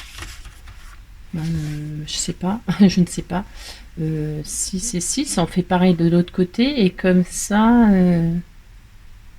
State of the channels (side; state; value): both; identical; correlation 1.00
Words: sais pas, je ne sais pas. 6 et 6, on fait pareil de l'autre côté. Et comme ça...